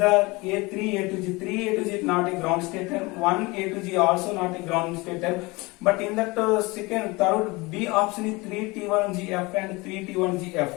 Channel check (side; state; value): right; quieter; 24.1 dB